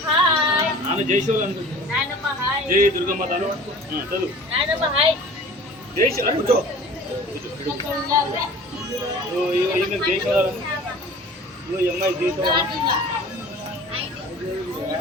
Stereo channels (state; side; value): normal; both; correlation 0.44